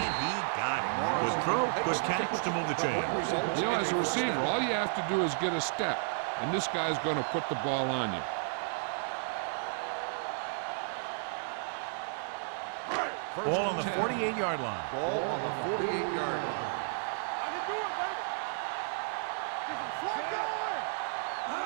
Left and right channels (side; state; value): left; silent; digital silence